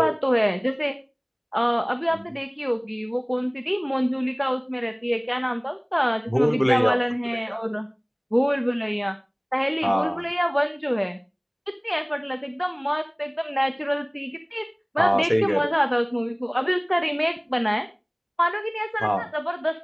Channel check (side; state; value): both; identical; correlation 1.00